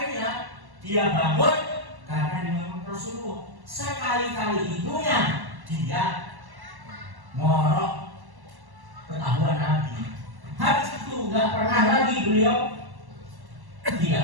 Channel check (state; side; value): late; left; 1.1 ms